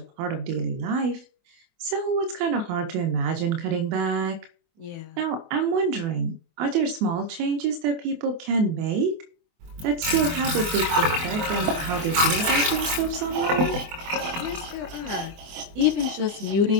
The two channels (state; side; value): late; left; 24 ms